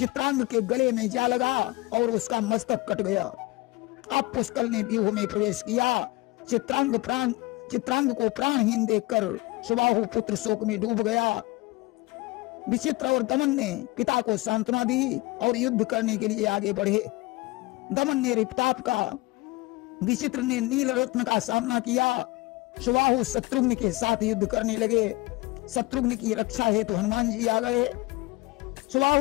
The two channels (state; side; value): quieter; right; 21.2 dB